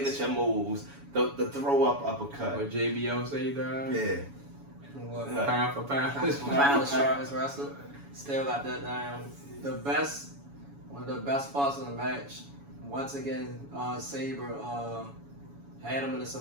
moves, the throw up uppercut. What JBL say that? Yeah. What? Pound for pound. Pound the sharpest wrestler. Still got that down. One of the best parts of the match. Once again, Sabre had him in a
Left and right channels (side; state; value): left; late; 7.1 ms